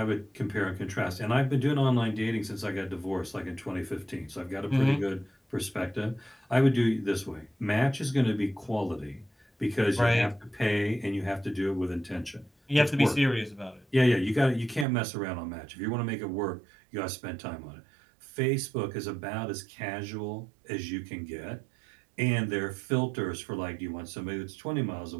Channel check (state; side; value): drops out; left; at 14.9 s